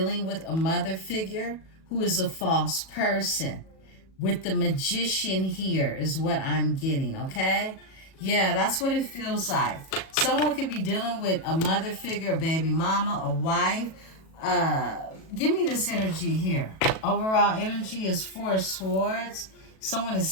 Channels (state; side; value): late; right; 37 ms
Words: with a mother figure who is a false person. With the Magician here is what I'm getting, okay? Yeah, that's what it feels like. Someone could be dealing with a mother figure, a baby mama, a wife. Give me this energy here. Overall energy is 4 of Swords. Someone